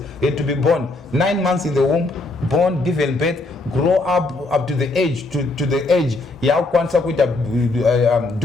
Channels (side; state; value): right; quieter; 3.1 dB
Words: He had to be born 9 months in the womb, born, given birth, grow up to the age, to the age.